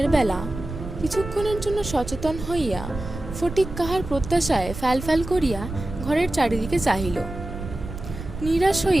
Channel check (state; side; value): noise; right; rumble, 9 dB below the sound